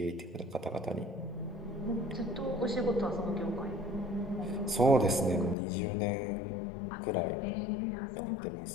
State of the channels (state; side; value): drops out; right; at 5.6 s